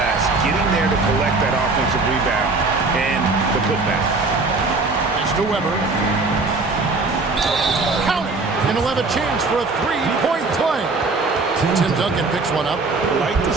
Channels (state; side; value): quieter; left; 3.7 dB